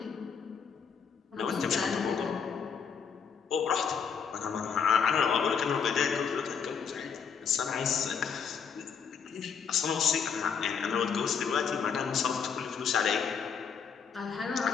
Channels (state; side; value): quieter; right; 6.6 dB